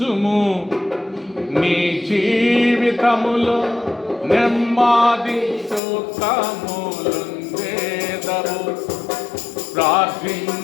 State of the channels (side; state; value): right; drops out; at 5.8 s